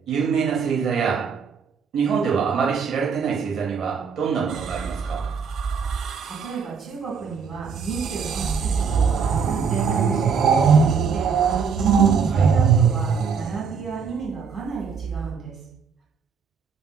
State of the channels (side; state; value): left; quieter; 5.9 dB